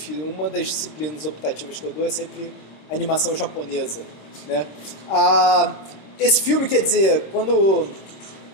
uma das disciplinas optativas que eu dou é sempre animação japonesa, né? Esse filme, quer dizer, quando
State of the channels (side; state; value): right; late; 26 ms